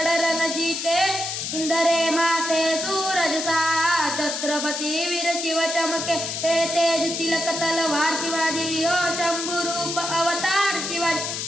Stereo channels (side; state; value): left; noise; hiss, 4 dB below the sound